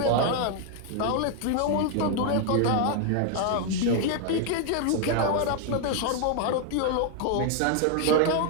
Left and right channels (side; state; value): both; different; correlation 0.00